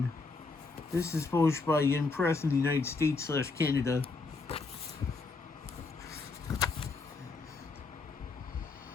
This is published by Yen Press in the United States / Canada.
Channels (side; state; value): right; quieter; 4.0 dB